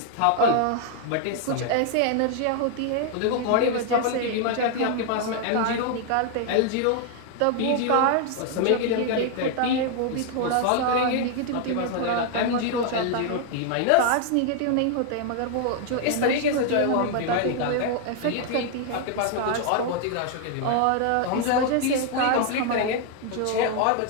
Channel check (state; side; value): different; both; correlation 0.00